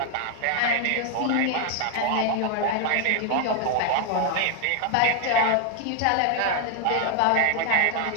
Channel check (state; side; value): different; both; correlation 0.00